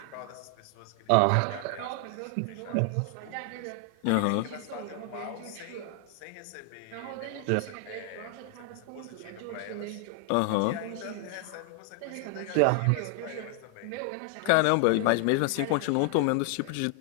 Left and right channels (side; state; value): both; different; correlation 0.00